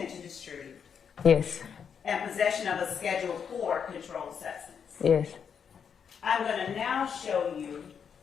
to distribute Yes. and possession of a Schedule 4 controlled substance? Yes. I'm going to now show you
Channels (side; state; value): right; quieter; 7.1 dB